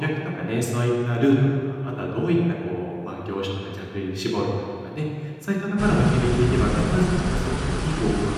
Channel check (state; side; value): identical; both; correlation 1.00